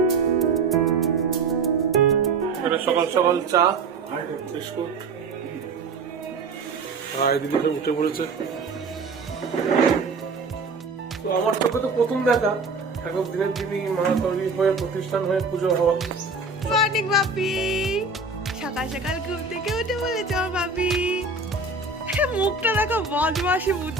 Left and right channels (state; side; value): quieter; left; 4.1 dB